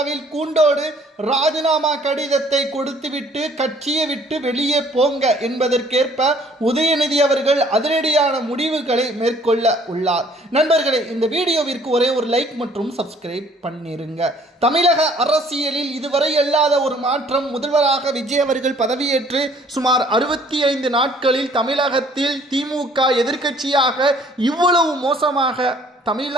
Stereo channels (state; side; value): normal; both; correlation 0.58